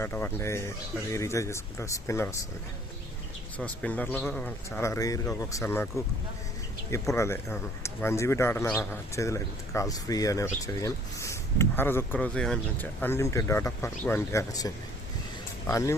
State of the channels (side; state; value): both; normal; correlation 0.57